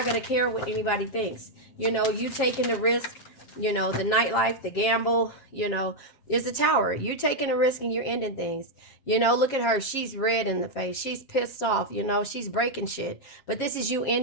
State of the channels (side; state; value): right; late; 7.3 ms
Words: going to care what anybody thinks. You know, you taking the risk, you know, the nightlife, the gamble, you know, is the Tower. You're taking a risk and you're ending things. You know, look at her. She's red in the face. She's pissed off. You know, she's breaking shit. But this is you